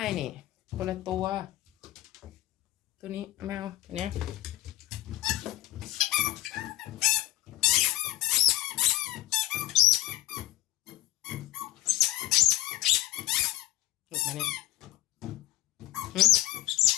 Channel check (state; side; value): quieter; right; 16.4 dB